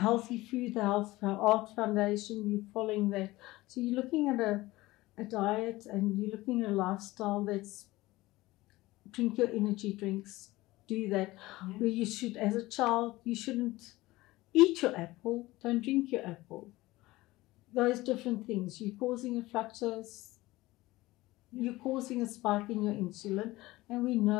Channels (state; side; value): quieter; right; 19.0 dB